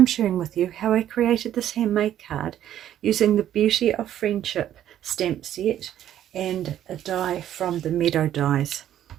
sharing with you how I created this handmade card using the Beauty of Friendship stamp set and a die from the Meadow dies.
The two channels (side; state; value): left; quieter; 11.4 dB